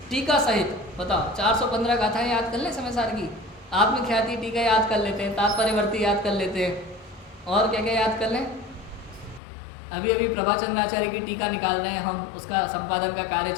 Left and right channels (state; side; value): drops out; right; at 9.4 s